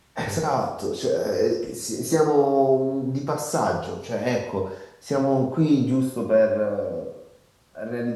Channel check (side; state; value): both; identical; correlation 1.00